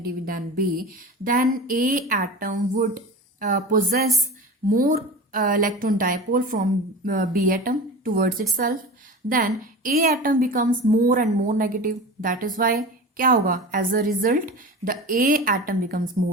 than B, then A atom would possess more electron dipole from B atom towards itself, then A atom becomes more and more negative. That is why क्या होगा? As a result, the A atom becomes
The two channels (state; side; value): normal; both; correlation 0.32